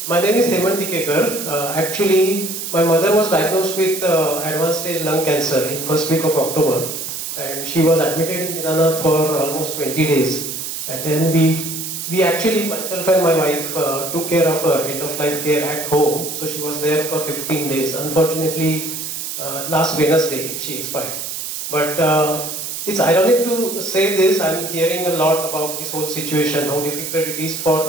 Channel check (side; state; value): right; noise; hiss, 6 dB below the sound